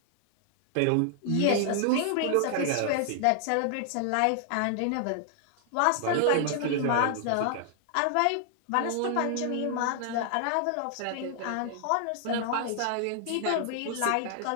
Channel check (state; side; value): different; both; correlation 0.00